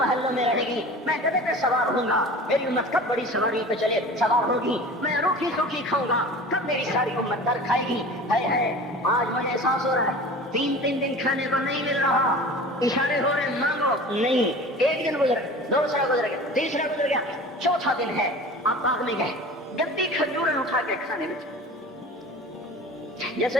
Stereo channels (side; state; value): both; normal; correlation 0.39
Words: میں رہے گی, میں گدھے پہ سوار ہوں گا, میری امت کب بڑی سواری پہ چلے سوار ہوگی, میں روکھی سوکھی کھاؤں گا, کب میری ساری امت در کھائے گی. آج مجھے احساس ہو رہا ہے 3 دن کھانے کو نہیں مل رہا, اشارے ہو رہے مانگو نہیں. 1 دن گزر گیا, دوسرا گزر گیا, تیسرا گزر گیا, چوتھا دن ہے, آپ باغ میں گئے, گندی کھجوریں اٹھا کے کھانے میں, جیسے